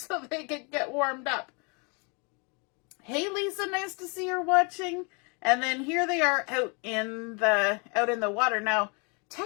they could get warmed up. Hey Lisa, nice to see her watching. And then here they are out in the water. Now,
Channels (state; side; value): quieter; right; 33.0 dB